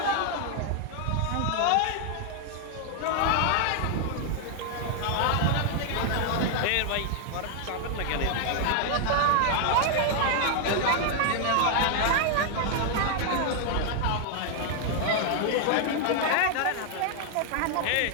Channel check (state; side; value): different; both; correlation 0.00